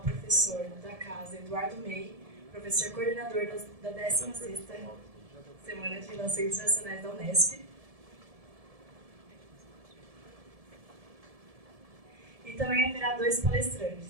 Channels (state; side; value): late; left; 1.7 ms